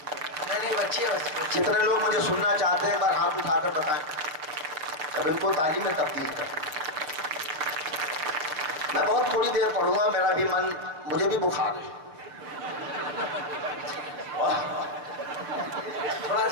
नहीं बची है। कितने लोग मुझे सुनना चाहते हैं, एक बार हाथ उठाकर बताएं, अब इनको ताली में तब्दील कर। मैं बहुत थोड़ी देर पढ़ूंगा, मेरा भी मन, मुझे भी बुखार है, थोड़ा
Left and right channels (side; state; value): left; late; 6.6 ms